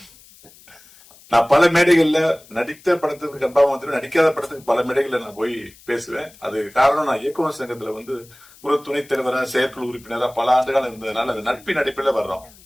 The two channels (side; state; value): left; noise; hiss, 25 dB below the sound